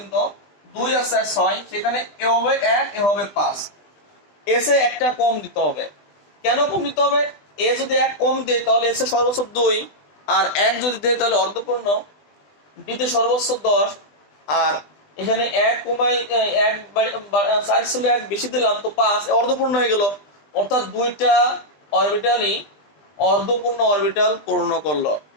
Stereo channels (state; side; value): late; right; 20 ms